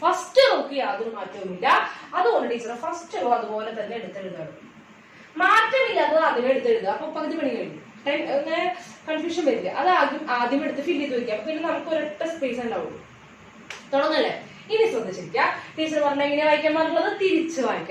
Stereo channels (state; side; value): identical; both; correlation 1.00